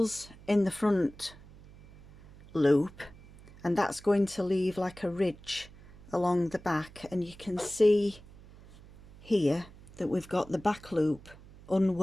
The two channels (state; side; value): noise; right; hum, 21 dB below the sound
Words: in the front loop, and that's going to leave like a ridge along the back, and you can see here that we've got the back loop